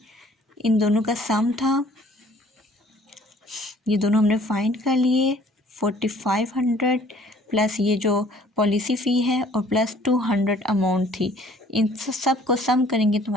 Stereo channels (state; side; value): normal; both; correlation 0.56